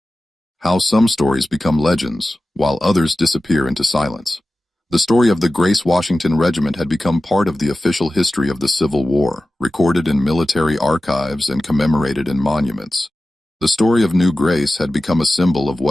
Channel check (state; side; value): normal; both; correlation 0.95